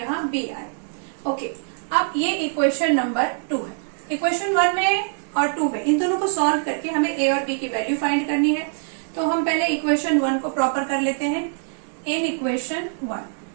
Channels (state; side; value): silent; left; 61 dB below the other